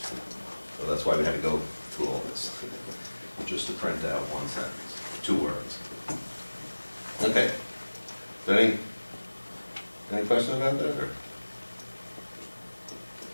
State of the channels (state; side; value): inverted; both; correlation -1.00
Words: So that's why we had to go through all this, just to print out one sentence, 2 words. Okay. Any questions about that? Or?